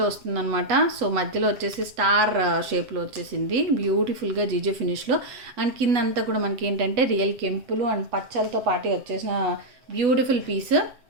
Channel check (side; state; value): left; late; 8.1 ms